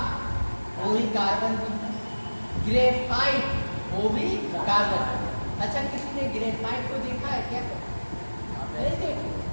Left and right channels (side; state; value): both; inverted; correlation -1.00